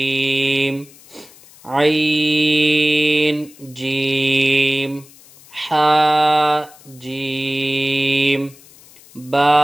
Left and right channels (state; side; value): noise; left; hiss, 24 dB below the sound